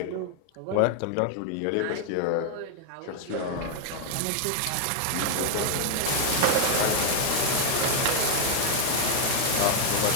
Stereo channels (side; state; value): both; different; correlation 0.00